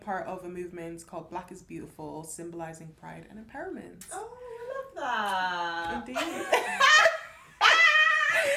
of a movement called Black is Beautiful, symbolizing pride and empowerment. Oh, I love that. Indeed.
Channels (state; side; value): identical; both; correlation 1.00